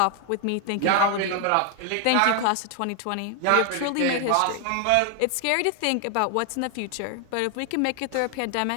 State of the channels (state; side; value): different; both; correlation 0.00